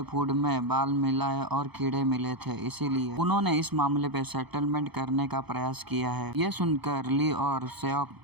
फूड में बाल मिलाए और कीड़े मिले थे, इसीलिए उन्होंने इस मामले पे सेटलमेंट करने का प्रयास किया है। ये सुनकर ली और सेओक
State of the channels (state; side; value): late; left; 0.98 ms